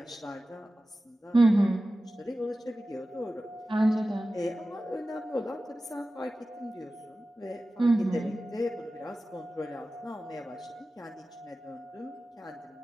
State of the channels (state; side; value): normal; both; correlation 0.95